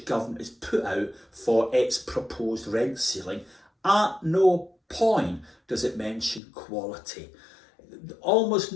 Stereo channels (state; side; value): drops out; right; at 6.4 s